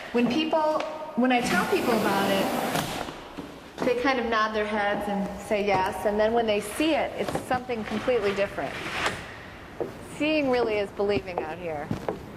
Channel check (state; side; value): identical; both; correlation 1.00